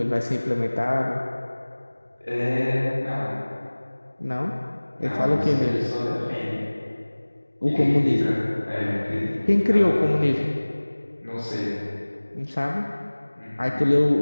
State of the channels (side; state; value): both; inverted; correlation -1.00